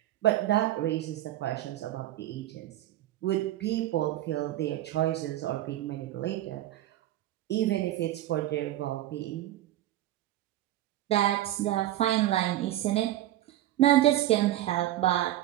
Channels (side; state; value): left; quieter; 14.0 dB